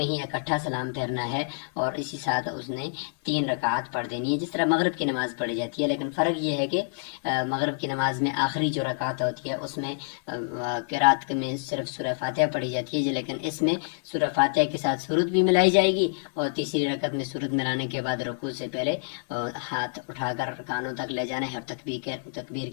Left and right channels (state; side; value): silent; right; 60 dB below the other